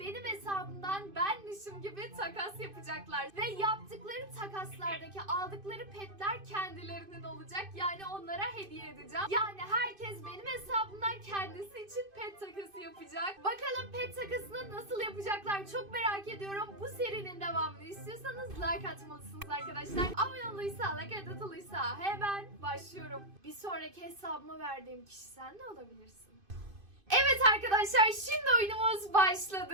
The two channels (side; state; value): left; late; 2.5 ms